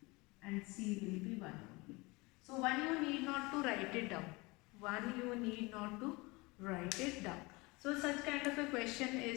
and c will be 1 only. So 1 you need not to write it down. 1 you need not to write it down. So such kind of a question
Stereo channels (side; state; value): right; quieter; 24.6 dB